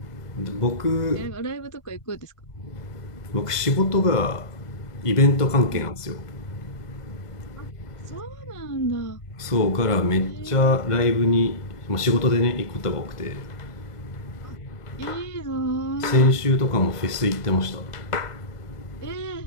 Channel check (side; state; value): right; late; 1.5 ms